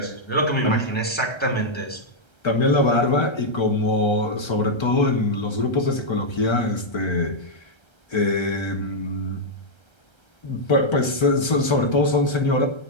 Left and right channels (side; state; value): right; late; 1.3 ms